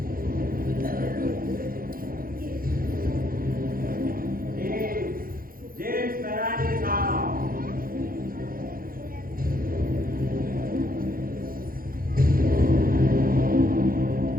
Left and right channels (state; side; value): late; left; 0.42 ms